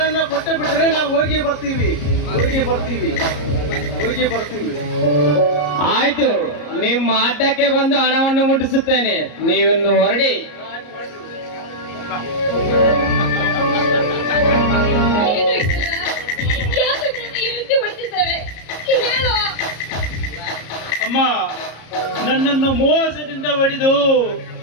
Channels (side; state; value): right; late; 34 ms